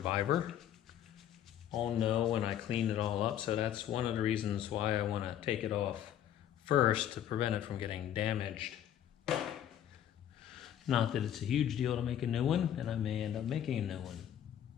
I'll know when I clean it all up, so that's one of the reasons why I want to take it off first to prevent it from getting damaged. Not that it's a huge deal to make a new one, and I may end up making a new one.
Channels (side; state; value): right; quieter; 10.5 dB